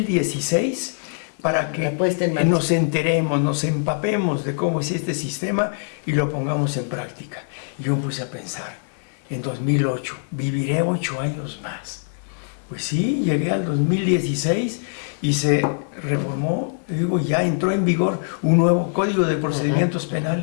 para que La puesta en marcha. nos enteremos, nos empapemos de cómo es este sistema y lo pongamos en práctica. Y yo me puse a pensar, en 2008, viviré 8 años más. Pues sí, llegué al 2016 y se reformó, te digo, ya entró en vigor un nuevo Código de Procedimientos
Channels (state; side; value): silent; right; 64 dB below the other